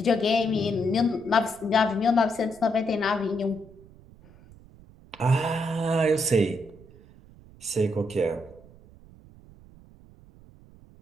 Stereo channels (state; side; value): noise; right; rumble, 23 dB below the sound